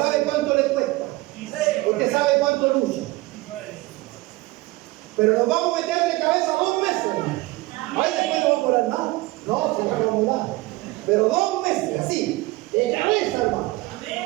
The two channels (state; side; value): quieter; left; 21.0 dB